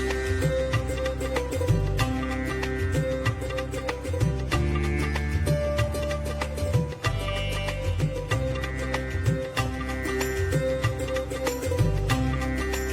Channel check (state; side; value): identical; both; correlation 1.00